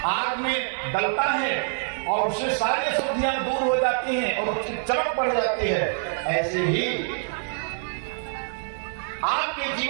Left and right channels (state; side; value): silent; left; 59 dB below the other